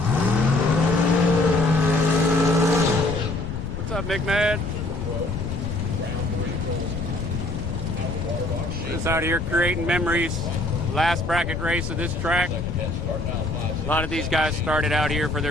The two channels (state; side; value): noise; left; rumble, 6 dB below the sound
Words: What's up, Mick Mad? Just out here creating memories. Last bracket race of this track. A lot of these guys started out here for